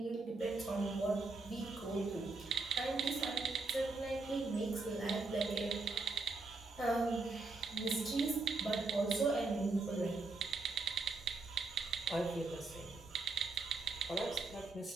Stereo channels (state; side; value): quieter; left; 3.5 dB